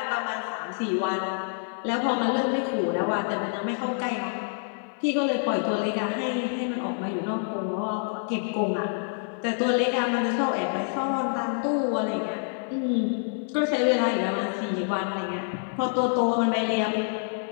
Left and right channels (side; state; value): right; silent; 60 dB below the other